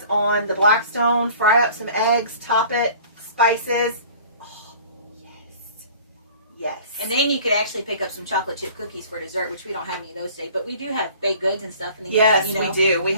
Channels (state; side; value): inverted; both; correlation -0.47